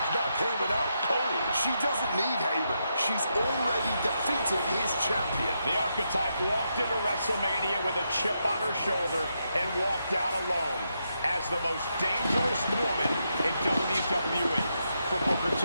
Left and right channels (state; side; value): inverted; both; correlation -0.82